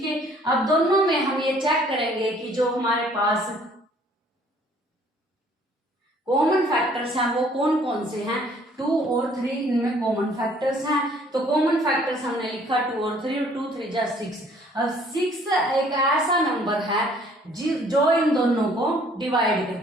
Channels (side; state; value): both; normal; correlation 0.59